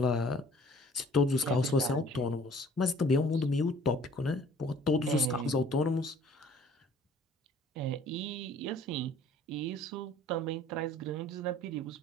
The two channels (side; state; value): both; normal; correlation 0.53